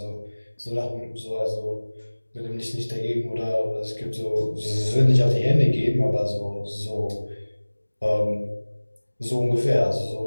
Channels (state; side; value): inverted; both; correlation -1.00